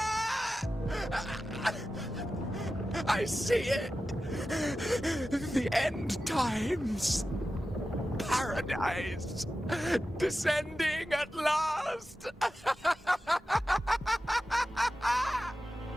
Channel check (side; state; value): both; normal; correlation 0.93